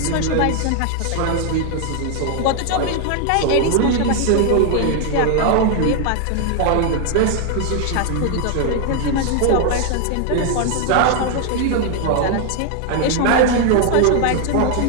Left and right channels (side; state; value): both; different; correlation 0.00